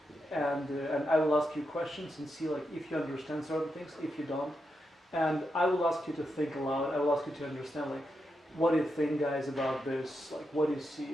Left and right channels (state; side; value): normal; both; correlation 0.85